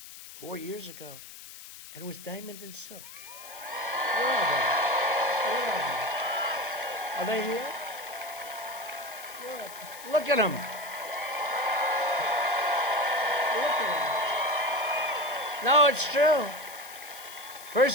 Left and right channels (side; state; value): left; noise; hiss, 15 dB below the sound